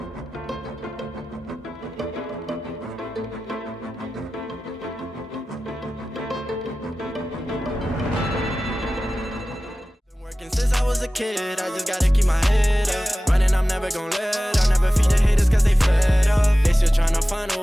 since I was a kid, I just gotta keep my head up. Running, I'm never gonna let up. Never feed the haters cause they fed up. They still tryna find a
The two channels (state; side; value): normal; both; correlation 0.95